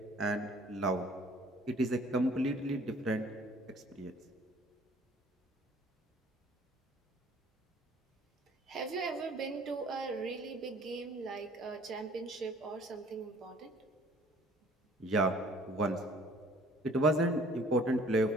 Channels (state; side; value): normal; both; correlation 0.54